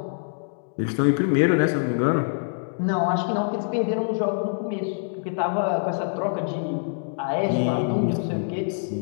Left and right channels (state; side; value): silent; right; digital silence